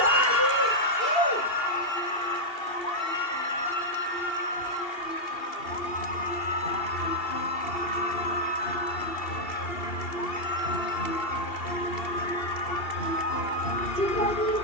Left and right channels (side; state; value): right; late; 2.7 ms